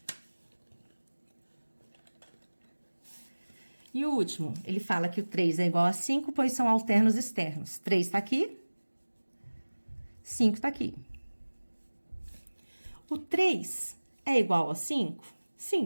E o último, ele fala que o 3 é igual a 5, pois são alternos externos. 3 tá aqui, 5 tá aqui. O 3 é igual a 5?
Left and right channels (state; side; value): inverted; both; correlation -1.00